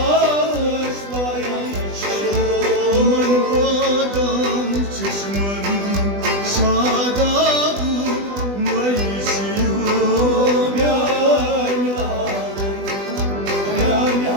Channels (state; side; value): late; left; 20 ms